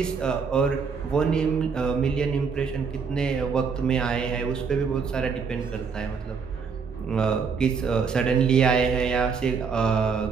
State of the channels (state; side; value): quieter; left; 5.7 dB